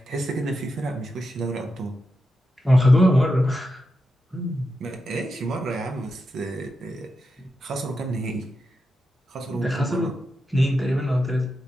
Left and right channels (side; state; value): both; normal; correlation 0.88